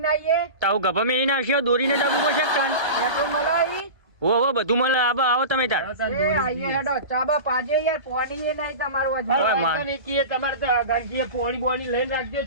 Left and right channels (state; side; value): late; left; 1.3 ms